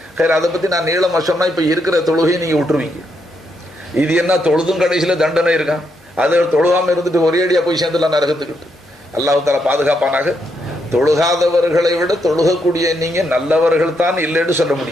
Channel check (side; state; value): both; normal; correlation 0.79